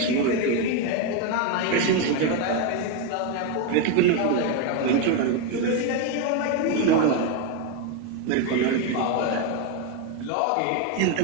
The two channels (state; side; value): different; both; correlation 0.02